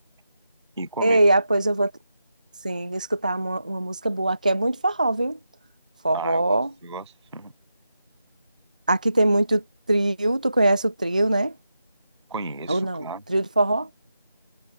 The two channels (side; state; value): both; inverted; correlation -0.88